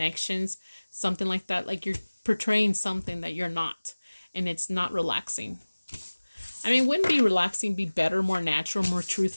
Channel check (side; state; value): both; inverted; correlation -1.00